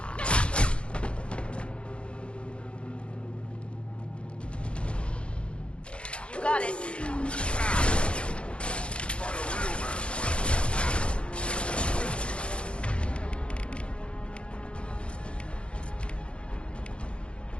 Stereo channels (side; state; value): right; late; 0.058 ms